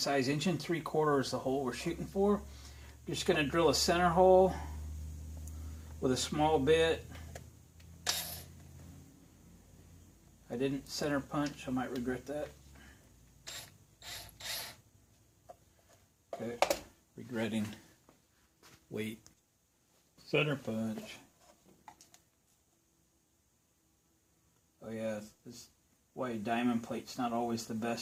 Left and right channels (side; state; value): both; identical; correlation 1.00